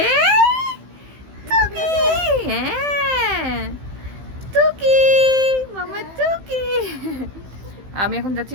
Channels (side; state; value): left; late; 15 ms